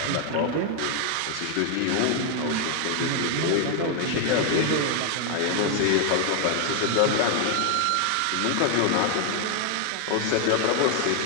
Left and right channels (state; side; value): different; both; correlation 0.00